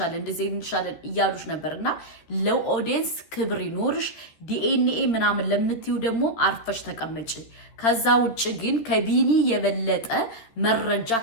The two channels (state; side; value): late; right; 13 ms